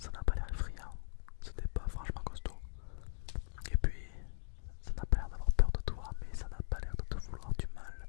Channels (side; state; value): right; silent; digital silence